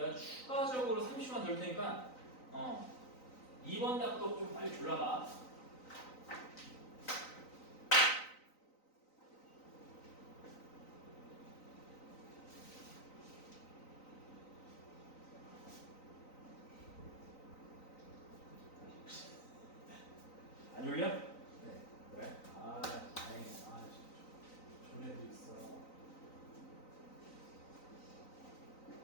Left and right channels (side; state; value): right; late; 3.9 ms